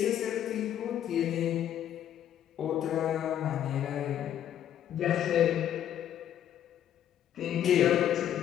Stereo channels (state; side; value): quieter; right; 10.5 dB